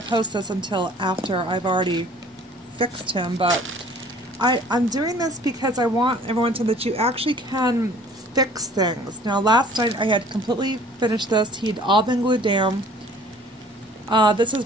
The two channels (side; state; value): both; normal; correlation 0.52